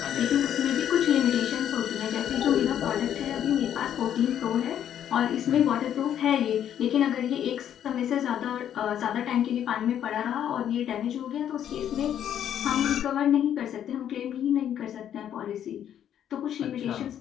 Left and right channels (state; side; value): quieter; right; 10.0 dB